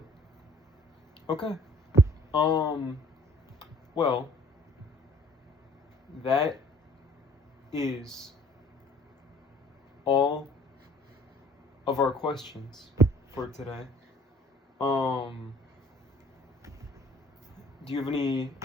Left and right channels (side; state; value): both; normal; correlation 0.55